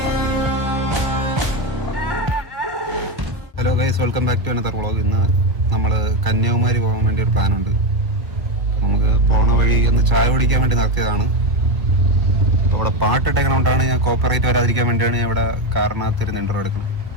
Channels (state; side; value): late; left; 1.2 ms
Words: guys, welcome back to another vlog. ഇന്ന് നമ്മൾ കന്യാകുമാരി പോകാൻ വേണ്ടി ഒരു പ്ലാനുണ്ട്. നമുക്ക് പോണ വഴി ഒന്ന് ചായ കുടിക്കാൻ വേണ്ടി നടത്തിയതാണ്. ഇവിടെ പാട്ടിട്ടേക്കണോണ്ടാണ് ഞാൻ കോപ്പറേറ്റ് വരാതിരിക്കാൻ വേണ്ടിയാണ് ഞാൻ ഇവിടെ കാറിനകത്തിരുന്ന് ഇൻ്റർവ്യൂ എടുക്കുന്നത്.